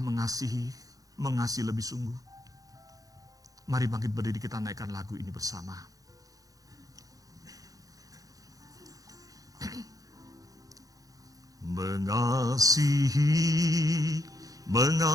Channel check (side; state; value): left; late; 0.17 ms